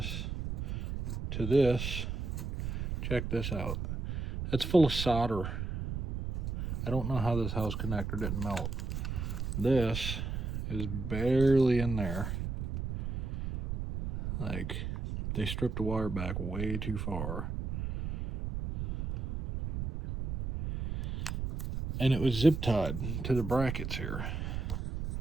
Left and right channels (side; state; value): right; noise; rumble, 4 dB below the sound